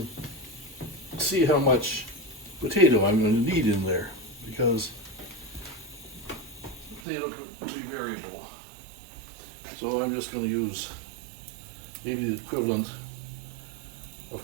see how much potato I'm going to need in there, because potato could be variable. So I'm just going to use maybe the equivalent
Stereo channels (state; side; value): drops out; left; at 7.0 s